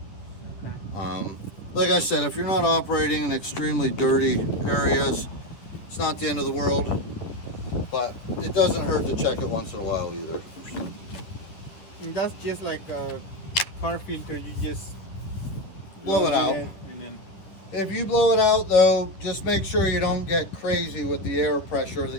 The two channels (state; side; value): late; right; 10 ms